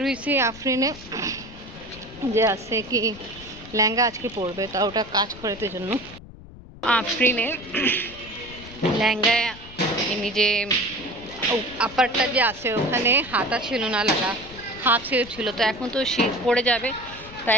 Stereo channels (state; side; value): noise; left; rumble, 18 dB below the sound